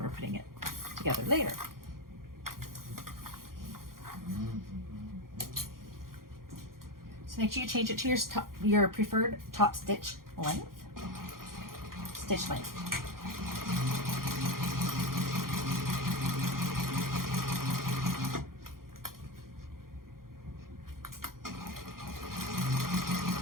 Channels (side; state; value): left; late; 0.92 ms